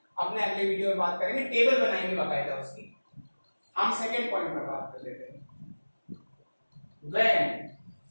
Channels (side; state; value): both; inverted; correlation -1.00